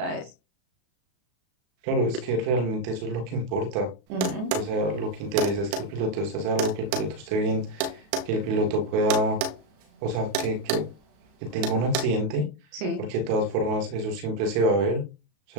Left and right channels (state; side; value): late; left; 33 ms